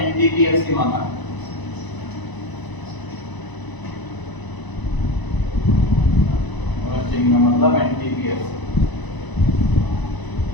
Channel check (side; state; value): right; late; 1.0 ms